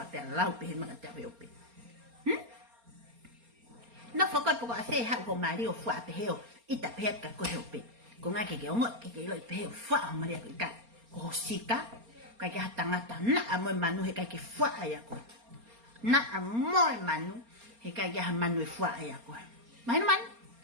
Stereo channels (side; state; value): left; late; 4.3 ms